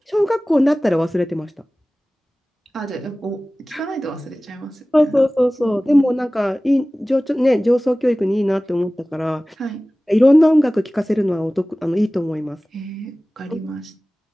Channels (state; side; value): normal; both; correlation 0.98